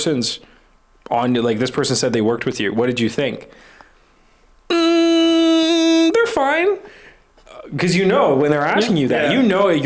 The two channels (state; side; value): identical; both; correlation 1.00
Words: on, like, this person said they worked with you. What did you think? They're fine. Because when they're asking you that,